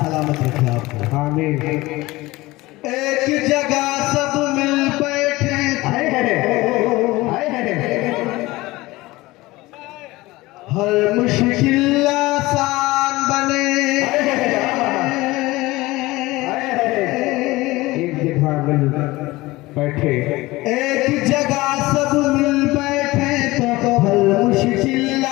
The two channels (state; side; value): quieter; right; 20.0 dB